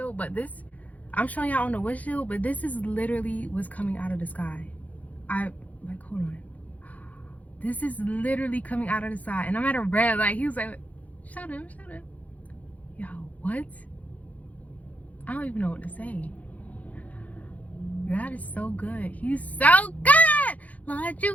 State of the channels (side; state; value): right; late; 0.073 ms